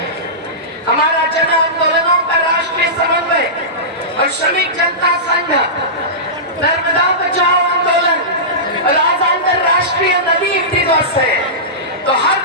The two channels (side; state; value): both; normal; correlation -0.18